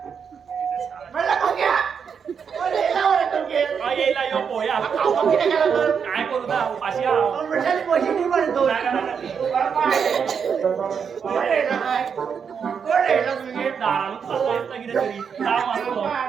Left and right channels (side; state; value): left; quieter; 6.7 dB